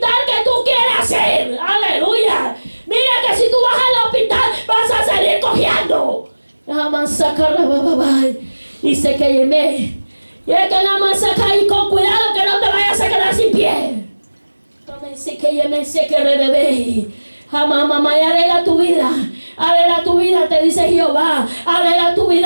que tú quieras ir, aleluya. Mira que si tú vas al hospital vas a salir cojeando. Y se que yeme. Y es que la masaca y con cuidado que no te vayas a quedar sin pie. Se que yeme, se que rebebe. Mamá, arregla tu vida. Arregla tu vida, te dice Jehová. Arregla tu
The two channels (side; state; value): both; inverted; correlation -1.00